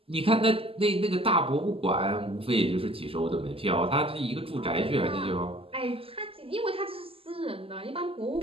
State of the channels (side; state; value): left; late; 0.27 ms